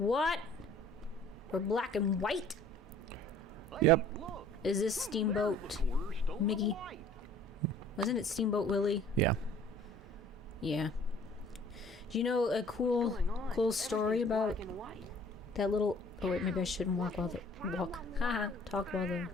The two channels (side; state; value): both; normal; correlation 0.52